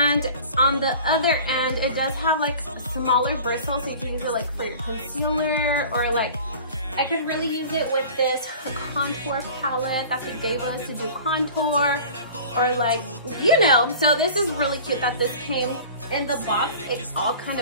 on the other end it does have like smaller bristles, so you can use it like for your concealer, or like I could really use it with this contour palette that they gave us to do contour, or like, you know. So this is really cute that this came in the box. It all kind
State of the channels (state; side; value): inverted; both; correlation -0.41